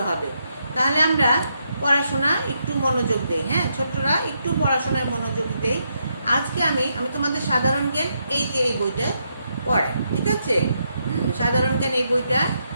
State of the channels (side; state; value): both; inverted; correlation -0.79